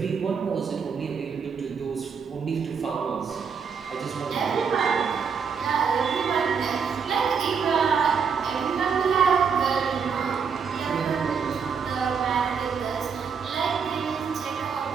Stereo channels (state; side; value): quieter; left; 6.3 dB